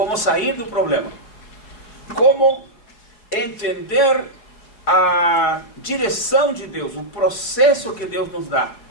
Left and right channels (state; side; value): late; right; 4.6 ms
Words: sair do problema. Como entender a direção de Deus, o processo que Deus nos dá,